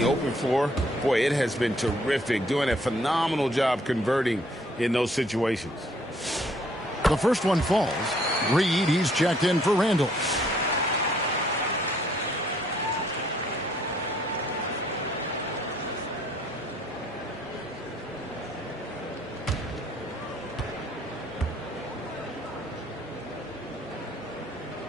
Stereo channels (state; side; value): normal; both; correlation 0.64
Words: open floor, boy, it has been terrific, doing a phenomenal job converting in those situations. The first one falls. Reed, he's checked in for Randall.